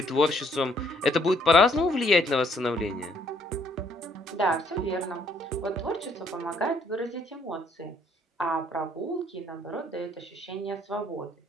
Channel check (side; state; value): both; normal; correlation 0.66